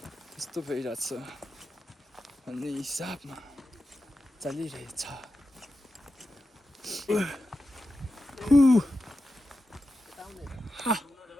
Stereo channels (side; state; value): both; normal; correlation 0.90